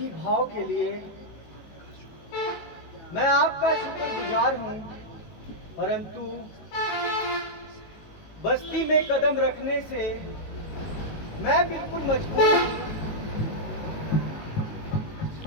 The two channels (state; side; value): late; right; 19 ms